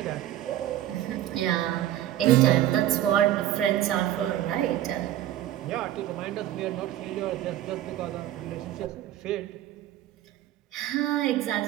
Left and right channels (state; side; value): quieter; left; 13.0 dB